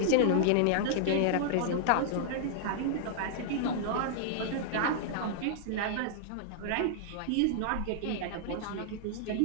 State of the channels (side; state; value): both; different; correlation -0.01